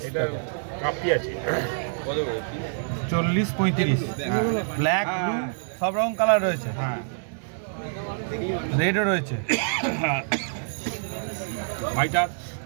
কাপি আছে কত করে? 40-35। ব্ল্যাক ব্লু সব রকম কালার রয়েছে। হ্যাঁ, রেডও রয়েছে। ভাইটার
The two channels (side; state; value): left; silent; 61 dB below the other